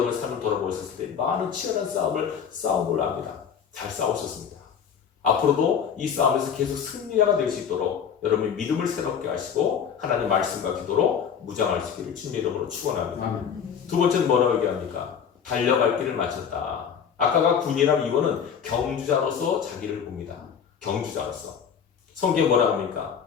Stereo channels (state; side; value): quieter; right; 7.5 dB